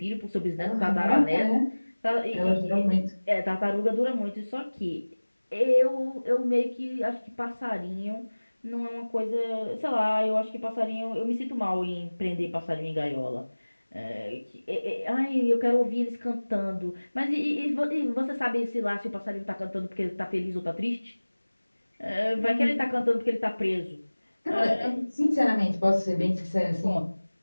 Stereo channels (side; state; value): both; inverted; correlation -1.00